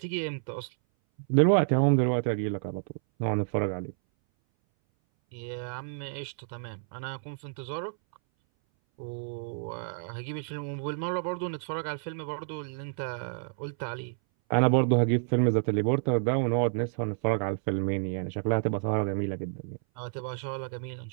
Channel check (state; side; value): silent; left; 58 dB below the other